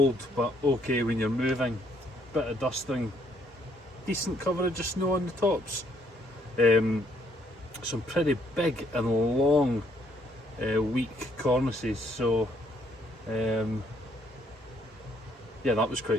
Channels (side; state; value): both; normal; correlation 0.68